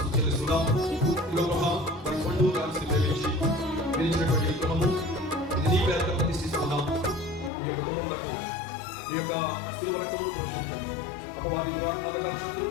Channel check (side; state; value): right; drops out; at 7.5 s